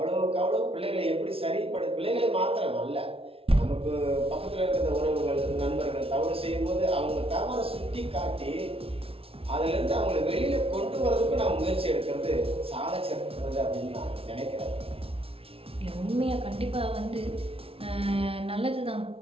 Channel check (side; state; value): left; late; 0.27 ms